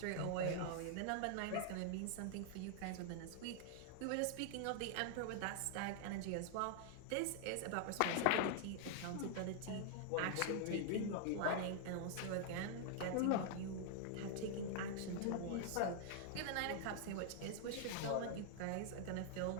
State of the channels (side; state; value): both; different; correlation 0.00